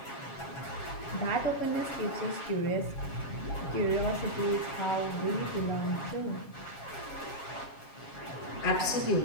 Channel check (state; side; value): late; right; 7.3 ms